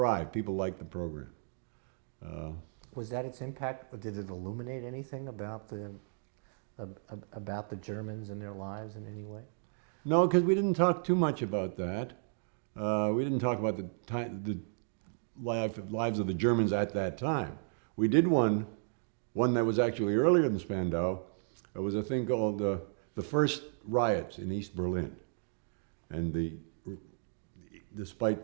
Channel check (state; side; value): silent; left; digital silence